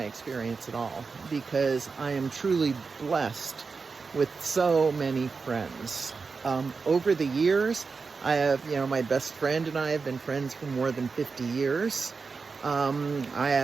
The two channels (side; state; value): left; quieter; 4.7 dB